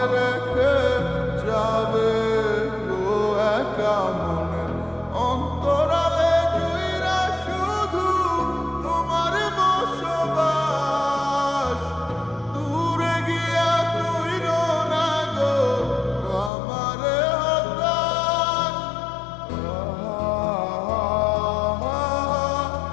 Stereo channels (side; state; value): right; drops out; at 16.5 s